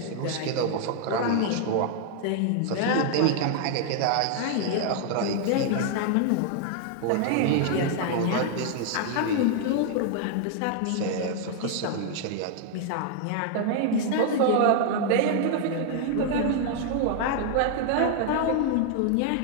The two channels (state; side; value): different; both; correlation 0.00